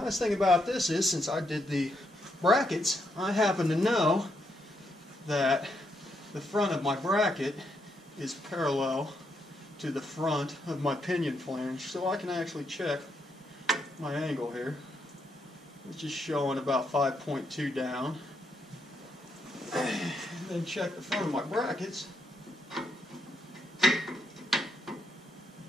thing about this is, since I did the brackets, I happen to know that the front of my bracket is parallel to the front of my pinion flange, so I can actually check my angle here, which is showing about 5.2 down. And then check the front of my brackets,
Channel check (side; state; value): both; normal; correlation 0.78